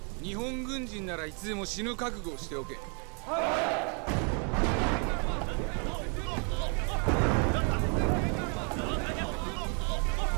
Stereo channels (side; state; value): left; quieter; 38.0 dB